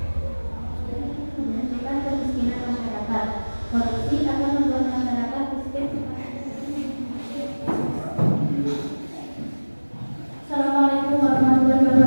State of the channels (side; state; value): both; inverted; correlation -1.00